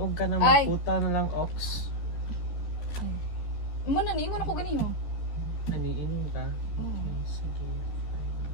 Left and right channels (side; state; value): right; late; 13 ms